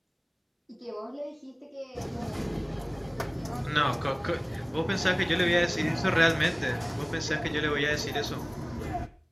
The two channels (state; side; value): identical; both; correlation 1.00